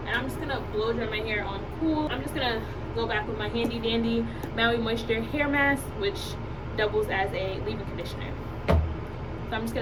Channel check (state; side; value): identical; both; correlation 1.00